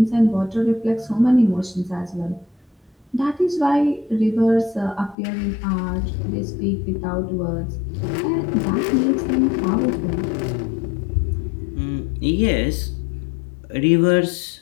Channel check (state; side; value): drops out; right; at 5.2 s